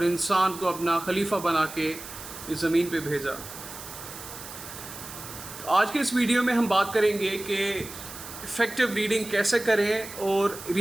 इंसान को अपना खलीफा बना के इस ज़मीन पे भेजा। तो आज के इस वीडियो में हम बात करेंगे कि इफ़ेक्टिव रीडिंग कैसे करें और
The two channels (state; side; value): noise; right; hiss, 13 dB below the sound